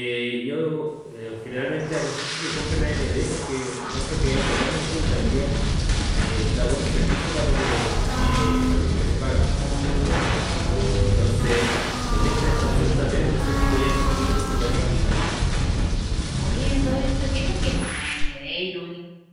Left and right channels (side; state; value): both; identical; correlation 1.00